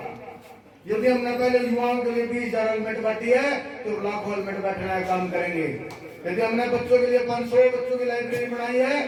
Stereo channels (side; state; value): both; identical; correlation 1.00